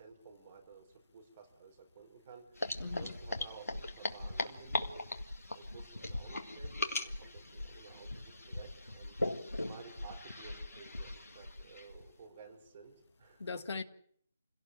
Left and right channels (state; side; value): inverted; both; correlation -0.79